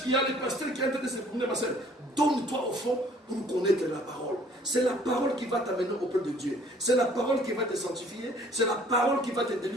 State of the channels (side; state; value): both; normal; correlation 0.57